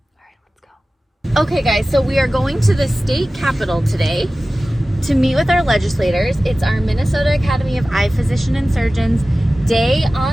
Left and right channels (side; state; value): both; normal; correlation 0.96